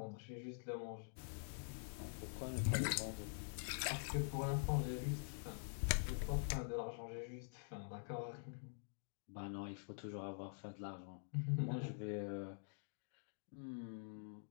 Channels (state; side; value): silent; right; digital silence